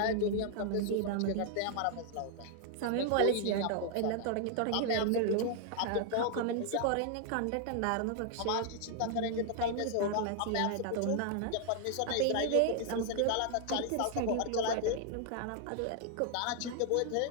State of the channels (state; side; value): different; both; correlation 0.00